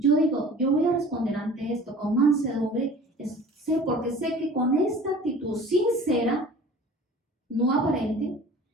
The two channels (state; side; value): normal; both; correlation 0.44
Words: digo, yo voy a responder ante esto con mansedumbre, porque sé que con esta actitud sincera, no aparente,